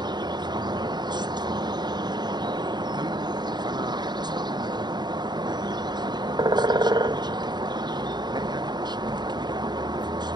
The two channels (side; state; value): left; late; 0.21 ms